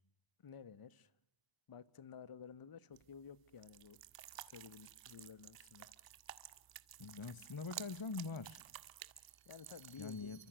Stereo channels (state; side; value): late; right; 1.0 ms